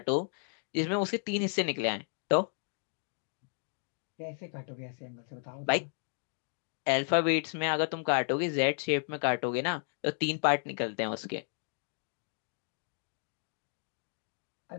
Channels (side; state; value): right; silent; 55 dB below the other